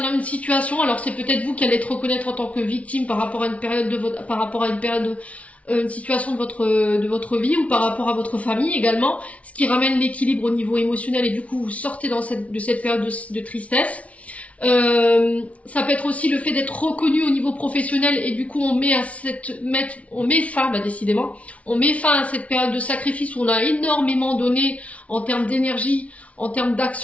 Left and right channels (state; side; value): late; right; 0.065 ms